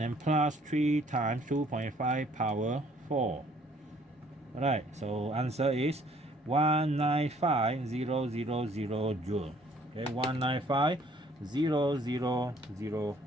plus 3 times 2.5 power 4. Alright, so answer is 195,000 joule. Okay, 195,000 joule.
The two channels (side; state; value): both; normal; correlation 0.60